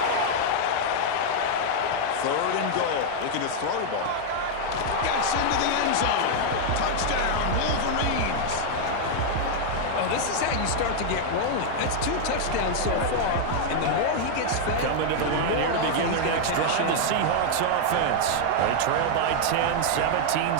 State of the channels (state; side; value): different; both; correlation 0.00